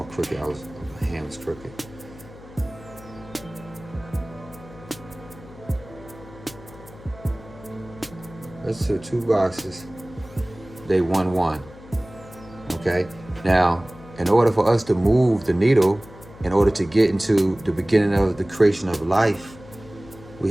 crooked. My hand was crooked. Let's do 2 boxes. They 1, 1. Okay? Now, in order for us to move the needle, in order to get into the beginning of the creation of life, we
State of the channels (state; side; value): noise; left; hum, 19 dB below the sound